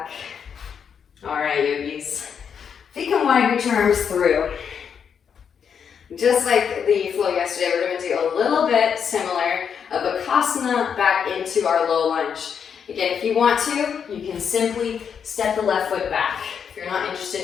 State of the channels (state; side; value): quieter; right; 7.3 dB